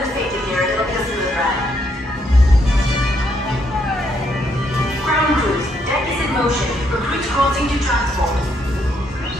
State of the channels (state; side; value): normal; both; correlation 0.74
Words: safety gear, it'll be a smooth ride. Ground crews, deck is in motion. Recruits crossing to transport.